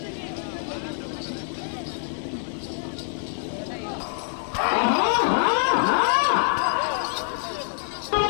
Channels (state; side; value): silent; right; digital silence